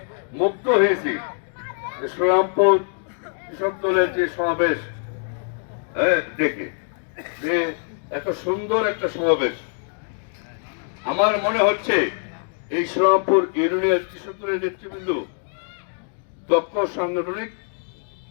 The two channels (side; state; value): right; silent; 55 dB below the other